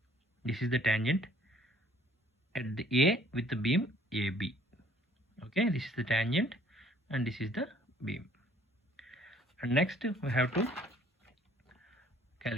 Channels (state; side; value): normal; both; correlation 0.59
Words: This is the tangent at the A with the beam AB. Okay, this is the tangent and this is the beam. And next we have to